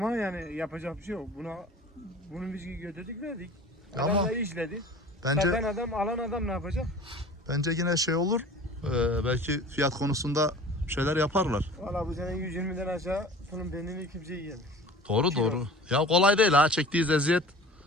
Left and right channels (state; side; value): normal; both; correlation 0.43